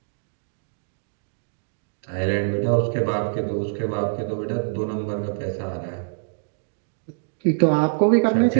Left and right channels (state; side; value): silent; left; digital silence